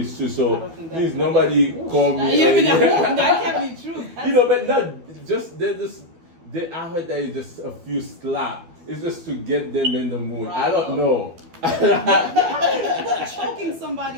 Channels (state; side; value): late; left; 12 ms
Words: true. I So don't think please that- nobody call me. That can't be true. You know, but not just I heard that it's just a few slap. It's just to get them in the mood. I don't know. But choking